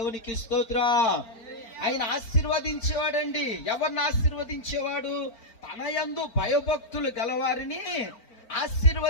స్తోత్రం. ఆయన ఆశీర్వదించేవాడండి. ఎవరిని ఆశీర్వదించేవాడు? తన యందు భయభక్తులు గలవారిని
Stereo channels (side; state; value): right; late; 4.4 ms